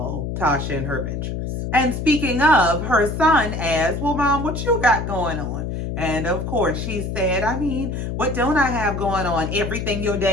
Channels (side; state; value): left; noise; hum, 4 dB below the sound